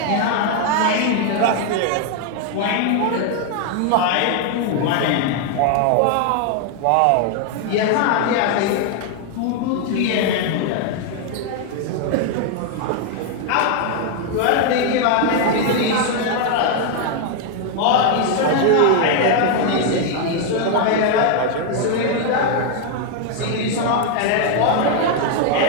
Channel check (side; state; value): both; different; correlation 0.00